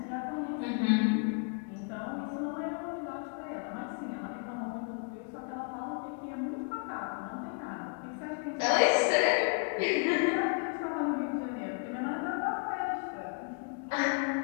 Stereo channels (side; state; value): right; quieter; 38.0 dB